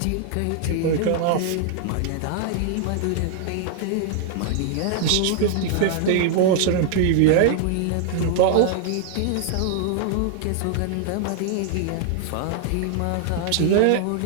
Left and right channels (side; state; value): both; different; correlation -0.01